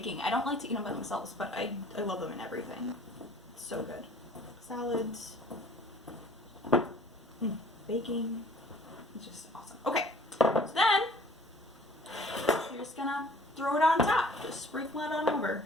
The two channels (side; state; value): both; normal; correlation 0.52